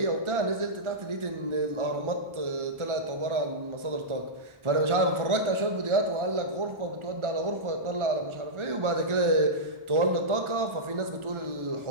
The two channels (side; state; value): left; late; 1.4 ms